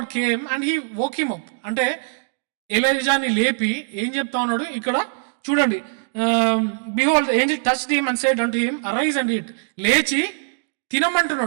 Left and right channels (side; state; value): left; silent; digital silence